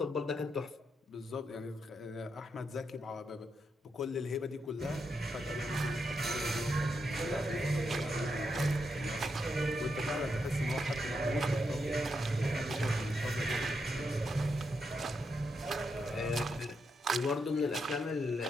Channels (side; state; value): both; normal; correlation 0.82